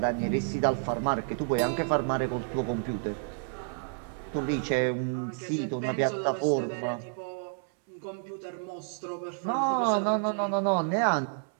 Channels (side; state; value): left; silent; 58 dB below the other